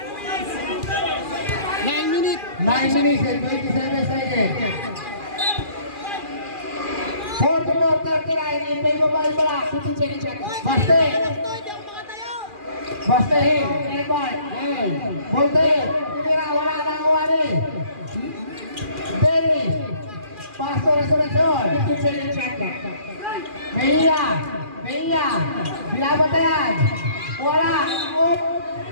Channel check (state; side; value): late; left; 2.4 ms